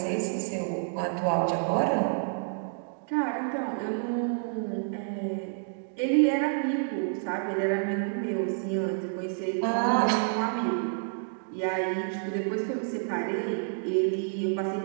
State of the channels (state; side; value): silent; left; digital silence